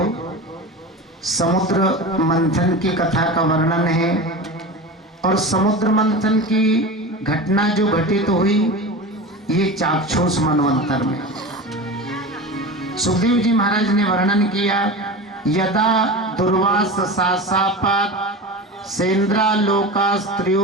समुद्र मंथन की कथा का वर्णन है और समुद्र मंथन की घटना जो घटित हुई ये चाक्षुष मनवंतर में। सुखदेव जी महाराज ने वर्णन किया, यदा दुर्वास सासापात सेन्द्रा लोका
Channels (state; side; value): normal; both; correlation 0.29